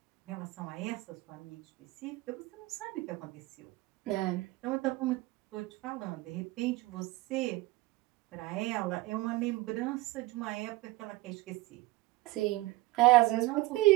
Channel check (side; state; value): left; quieter; 20.0 dB